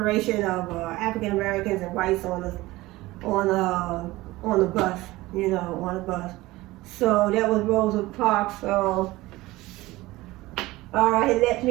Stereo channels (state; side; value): quieter; left; 19.1 dB